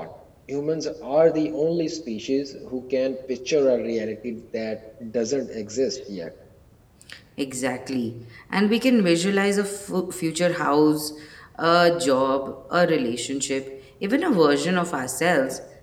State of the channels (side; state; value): both; identical; correlation 1.00